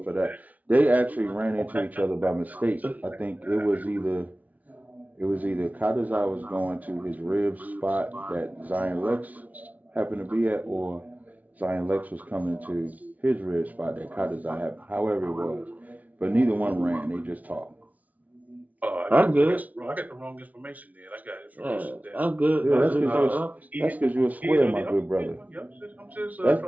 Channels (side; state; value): left; late; 0.073 ms